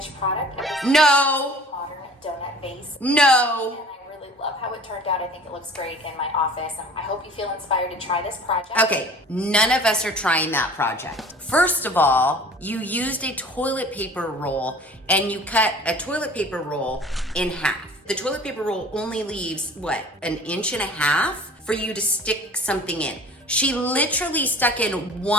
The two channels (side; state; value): both; normal; correlation 0.46